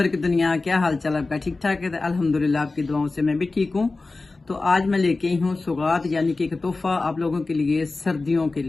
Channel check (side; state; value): right; quieter; 3.5 dB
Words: की दुनिया, क्या हाल चाल आपका? ठीक ठाक है? अल्हम्दुलिल्लाह आपकी दुआओं से मैं भी ठीक हूँ। तो आज मैं लेके आई हूँ सौगात, यानी कि एक तोहफा आप लोगों के लिए सर्दियों के